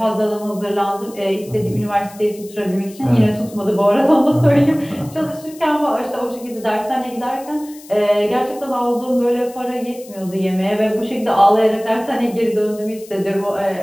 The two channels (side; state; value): left; noise; hiss, 21 dB below the sound